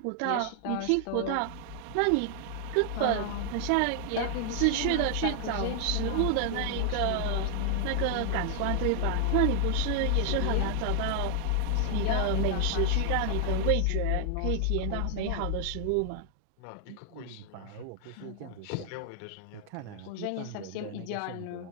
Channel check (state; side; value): different; both; correlation 0.00